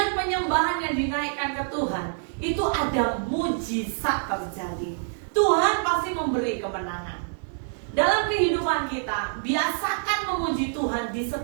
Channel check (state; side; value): silent; left; digital silence